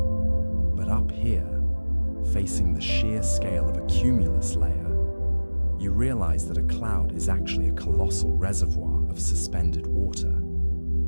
But up here, facing the sheer scale of a cumulus layer, you realize that a cloud is actually a colossal reservoir of suspended water,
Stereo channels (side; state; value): both; inverted; correlation -1.00